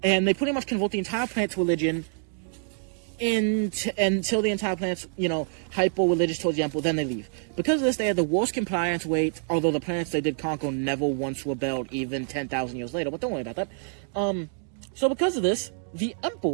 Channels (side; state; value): left; silent; digital silence